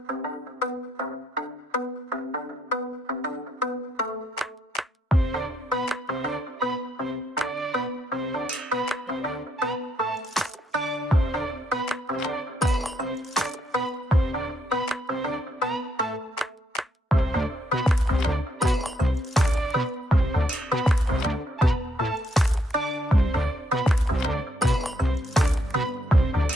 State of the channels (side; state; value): both; normal; correlation 0.74